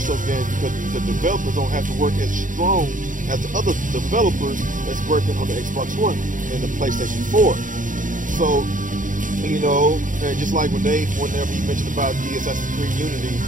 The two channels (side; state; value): left; late; 0.38 ms